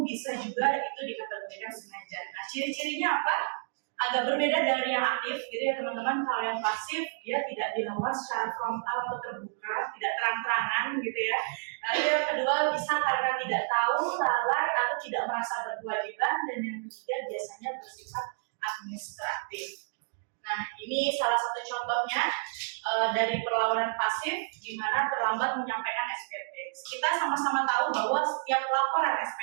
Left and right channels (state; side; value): silent; left; digital silence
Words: bisa juga itu dikategorikan sengaja. Nah, ciri-cirinya apa? Agak berbeda dari yang aktif, gitu ya teman-teman. Kalau yang pasif, dia tidak dilakukan secara frontal atau terbuka, tidak terang-terangan, gitu ya. Lalu yang kedua bisa karena tidak tahu, lalai, atau tidak merasa berkewajiban, dan yang ketiga biasanya bersifat administratif. Nah, ini salah satu contohnya dari perlawanan pasif, di mana terlambat menyampaikan SPT. Kita sama-sama tahu bahwa setiap laporan